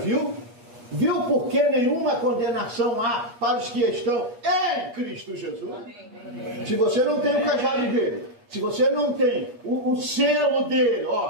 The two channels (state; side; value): late; left; 8.4 ms